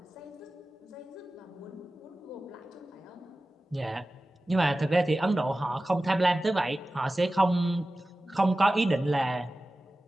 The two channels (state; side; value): normal; both; correlation 0.96